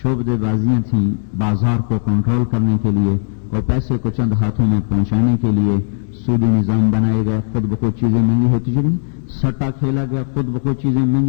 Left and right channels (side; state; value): right; silent; digital silence